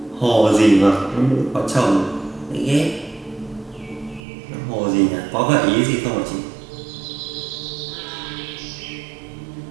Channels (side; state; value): left; drops out; at 4.2 s